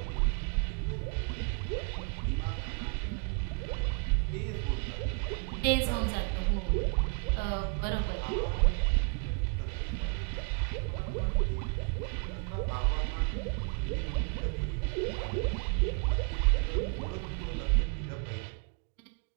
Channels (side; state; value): left; quieter; 35.8 dB